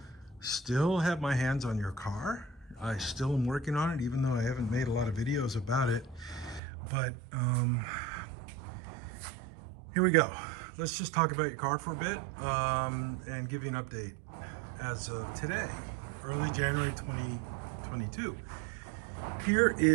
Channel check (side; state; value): left; drops out; at 6.6 s